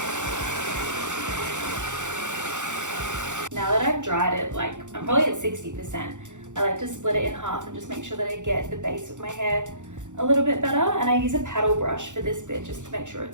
Now that I've dried it, I'm probably at 60%, I like to split it in half and just make sure that I get the base of my hair a little bit better, and I use a paddle brush for this bit just to make sure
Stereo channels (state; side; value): late; left; 0.85 ms